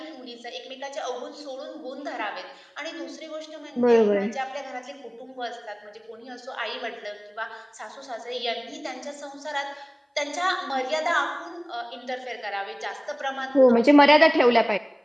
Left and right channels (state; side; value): identical; both; correlation 1.00